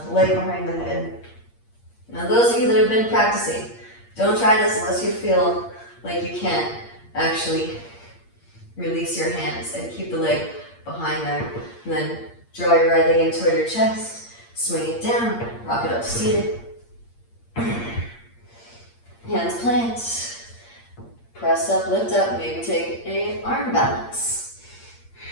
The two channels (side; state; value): right; late; 8.6 ms